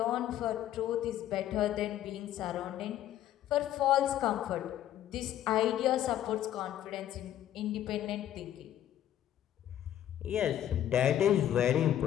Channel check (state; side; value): quieter; right; 11.7 dB